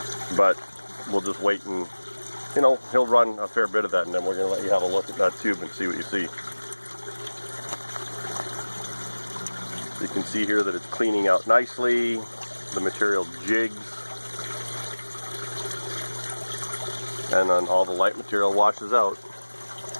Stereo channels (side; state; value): both; inverted; correlation -1.00